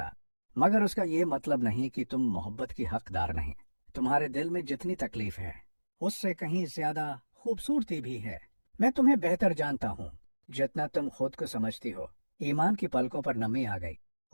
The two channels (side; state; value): both; inverted; correlation -1.00